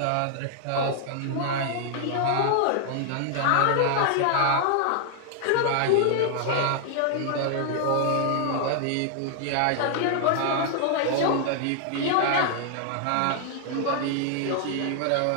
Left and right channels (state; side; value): different; both; correlation 0.00